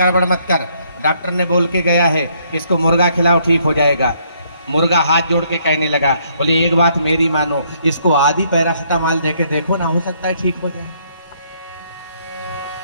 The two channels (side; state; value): both; inverted; correlation -0.69